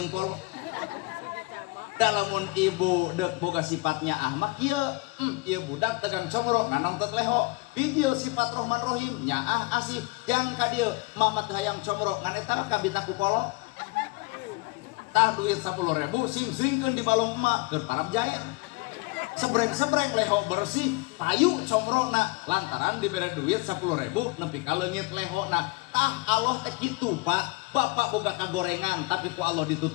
polo. Dalamun ibu dek boga sifatnya ahmak kieu, ieu budak dagang combro nganongtot leho. Video sifat Rahman Rahim nyaah asih jang ka dieu mama teh hayang combro ngan eta kabita ku polo. Tah duit 10.000 sing-singkeun di balong emak keur parab jae. Sebreng-sebreng leho bersih payu combrongna lantaran dibere duit 10.000 nepi ka leungit lehona. Tah Allah teh kitu Pak. Bapak boga kagorengan tapi ku Allah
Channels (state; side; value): quieter; right; 24.9 dB